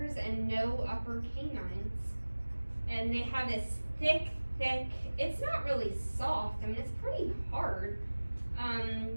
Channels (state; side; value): inverted; both; correlation -1.00